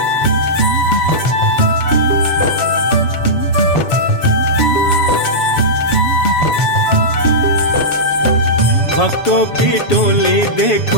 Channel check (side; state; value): right; late; 7.1 ms